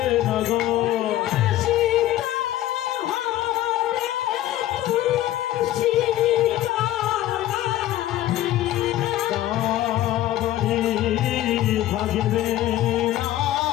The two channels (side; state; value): right; quieter; 14.1 dB